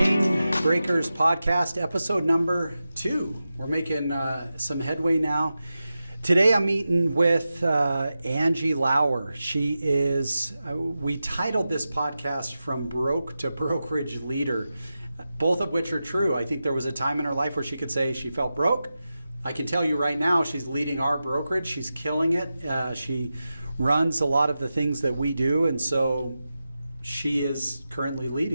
Breakers podcast, episode number 2. We're making some headway now. Today I'm meeting with Angie Lauer. She is, we titled this podcast From Broke to Brokerage Leader, both of which are true. I think there was a time in her life where she could say she felt broke. I can tell you right now she's leading our brokerage. She's killing it. She runs a lot of the things that we do, and so she is currently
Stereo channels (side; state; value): both; inverted; correlation -0.92